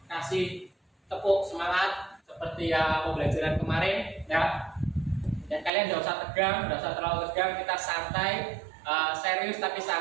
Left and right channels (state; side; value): drops out; left; at 5.7 s